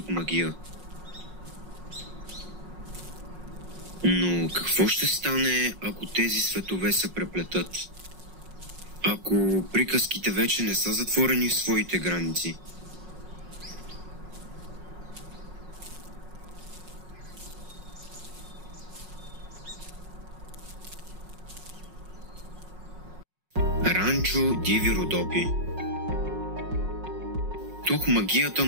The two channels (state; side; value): late; left; 5.5 ms